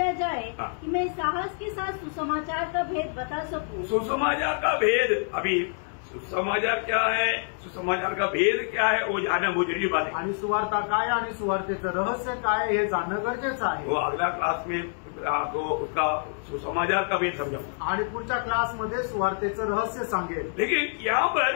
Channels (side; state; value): right; silent; 60 dB below the other